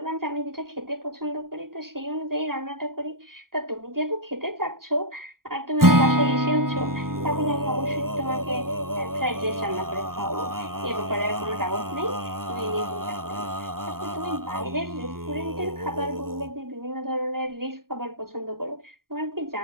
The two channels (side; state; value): left; late; 0.92 ms